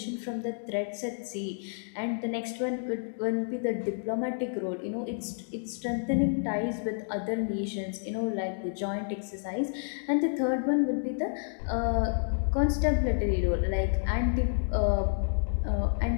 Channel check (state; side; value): silent; right; digital silence